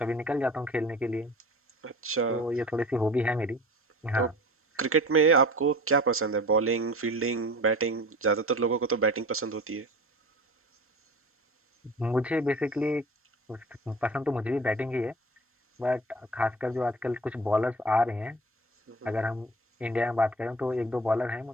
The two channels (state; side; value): normal; both; correlation 0.39